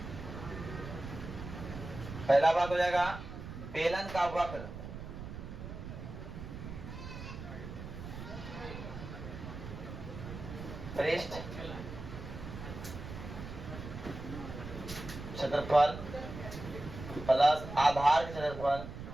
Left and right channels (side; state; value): right; noise; rumble, 10 dB below the sound